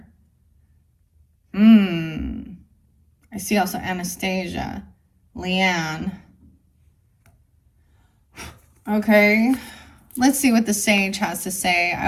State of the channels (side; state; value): both; identical; correlation 1.00